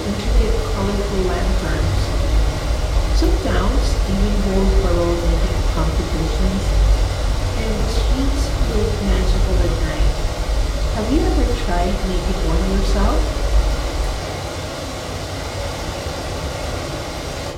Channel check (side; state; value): both; identical; correlation 1.00